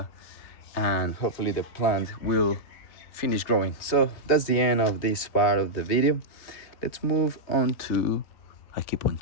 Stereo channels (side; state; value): right; late; 3.2 ms